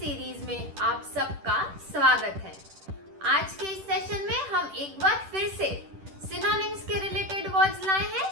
में आप सबका स्वागत है। आज के इस सेशन में हम एक बार फिर से सिनोनिम्स के रिलेटेड वर्ड्स लाए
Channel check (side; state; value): left; late; 10 ms